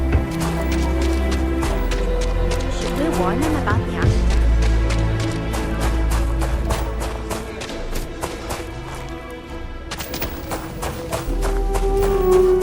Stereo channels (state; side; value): identical; both; correlation 1.00